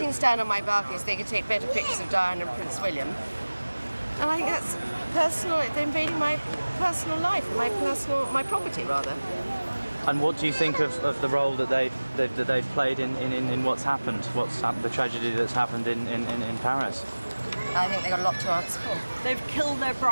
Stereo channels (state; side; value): inverted; both; correlation -1.00